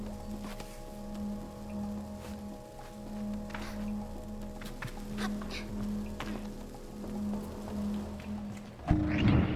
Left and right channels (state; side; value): identical; both; correlation 1.00